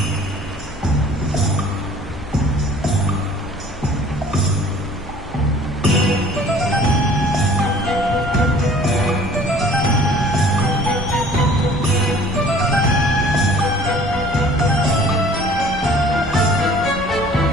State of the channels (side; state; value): both; normal; correlation 0.51